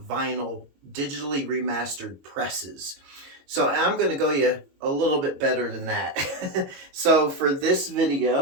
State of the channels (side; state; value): left; late; 22 ms